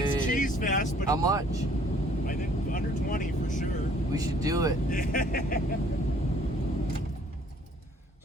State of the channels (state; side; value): normal; both; correlation 0.59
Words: It's cheese fest, but... How much? I think under 20 for sure. We should do it.